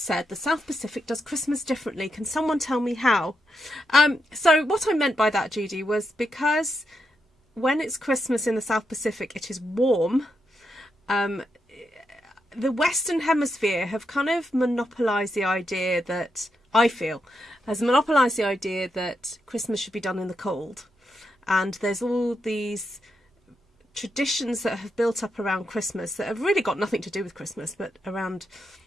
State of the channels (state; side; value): normal; both; correlation 0.83